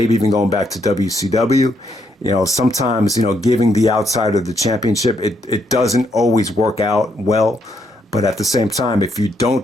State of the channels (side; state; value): both; normal; correlation 0.75